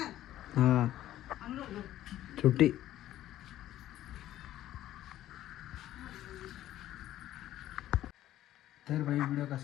हा छोटी. तर भाई व्हिडिओ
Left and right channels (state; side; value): quieter; right; 13.3 dB